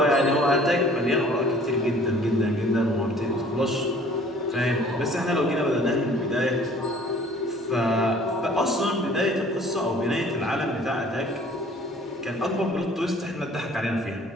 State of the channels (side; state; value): both; normal; correlation 0.53